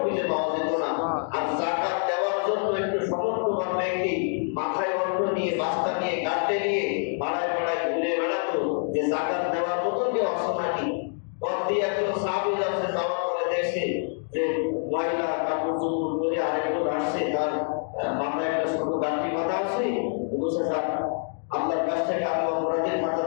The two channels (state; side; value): silent; right; 61 dB below the other